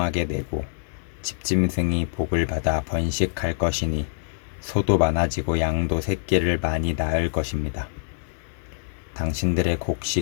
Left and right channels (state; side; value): silent; right; 62 dB below the other